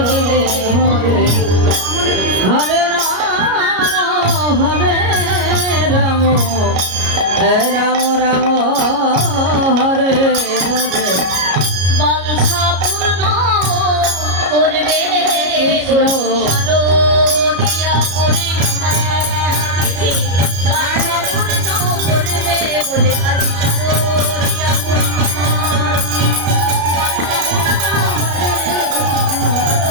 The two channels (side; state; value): left; late; 33 ms